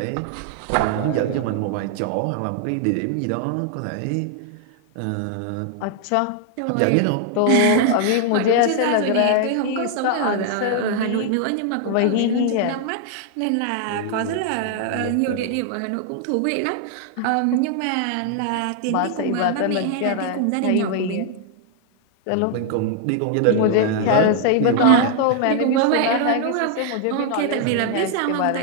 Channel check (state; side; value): different; both; correlation 0.00